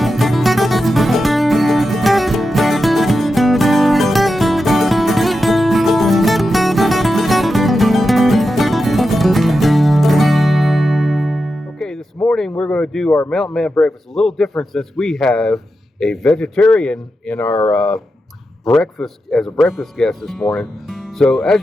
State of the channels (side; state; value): both; normal; correlation 0.89